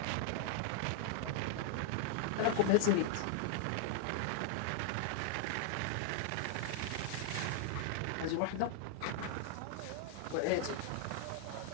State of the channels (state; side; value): different; both; correlation 0.00